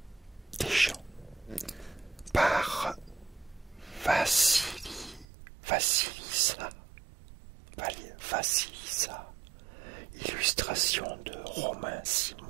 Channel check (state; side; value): drops out; left; at 5.2 s